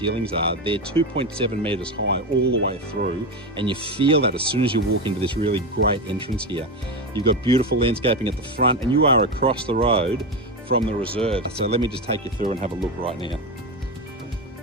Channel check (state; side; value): normal; both; correlation 0.16